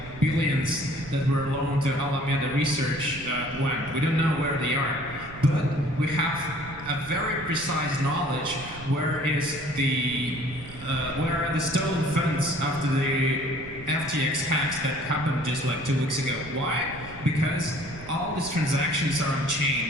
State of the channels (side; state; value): right; noise; rumble, 16 dB below the sound